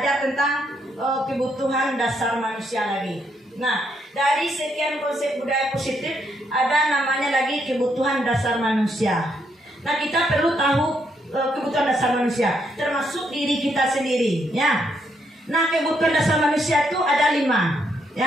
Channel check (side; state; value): both; normal; correlation 0.75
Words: tentang kebutuhan dasar manusia lagi. Nah, dari sekian konsep budaya positif ada namanya lagi kebutuhan dasar manusia. Nah, kita perlu tahu kebutuhan dasar manusia, termasuk diri kita sendiri, ya. Nah, kebutuhan dasar manusia itu ada 5,